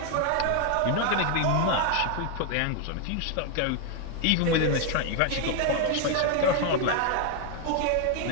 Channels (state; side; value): different; both; correlation 0.01